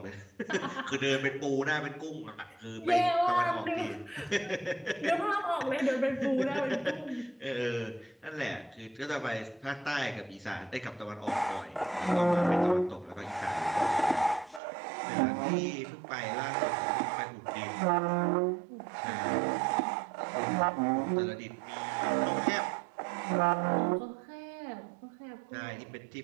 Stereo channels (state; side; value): drops out; left; at 14.6 s